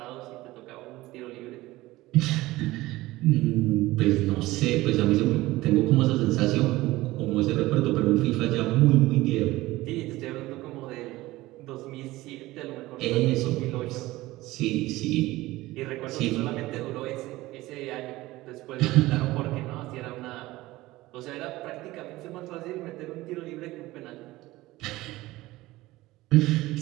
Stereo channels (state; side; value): quieter; left; 18.4 dB